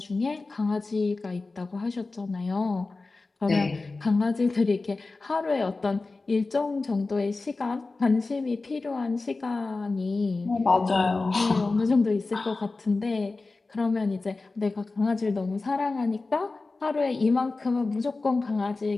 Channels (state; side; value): quieter; right; 3.6 dB